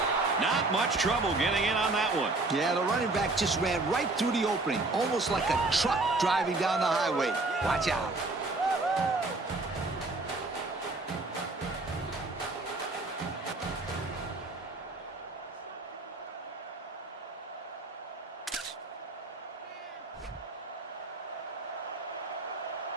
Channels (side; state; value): left; quieter; 3.2 dB